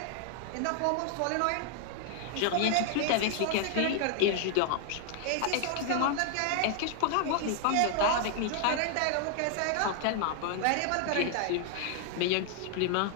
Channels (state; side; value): different; both; correlation 0.00